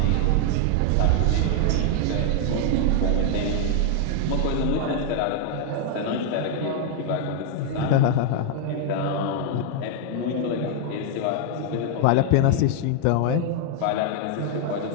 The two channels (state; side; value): different; both; correlation 0.00